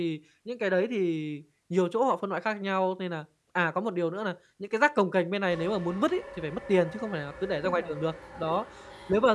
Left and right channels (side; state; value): both; identical; correlation 1.00